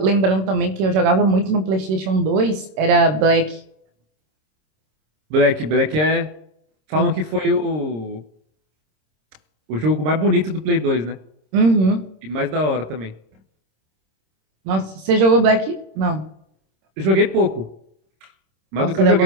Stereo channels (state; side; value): late; left; 26 ms